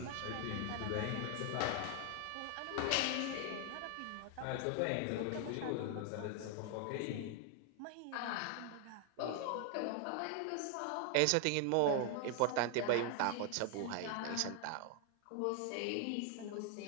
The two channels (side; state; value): both; different; correlation 0.00